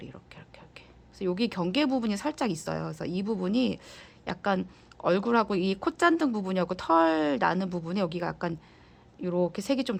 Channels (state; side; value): identical; both; correlation 1.00